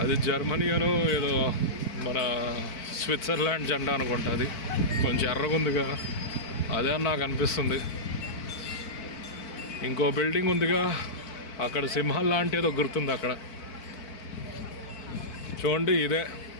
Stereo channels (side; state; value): right; late; 4.5 ms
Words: అది జర్మనీ అను ఏదో మన స్విట్జర్లాండ్ జెండా అనుకుంటా. అది కొంచెం ఎర్రగుందిగా, అదే అని నాకు అనిపిస్తుంది. ఇంకో బిల్డింగ్ ఉందిగా అక్కడ, సింహం లాంటి ఏదో గుర్తుంది అక్కడ చూడండి. ఇదే